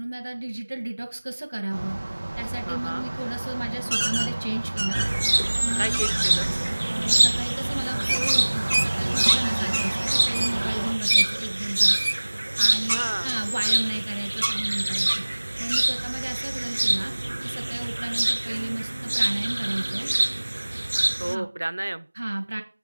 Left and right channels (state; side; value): inverted; both; correlation -1.00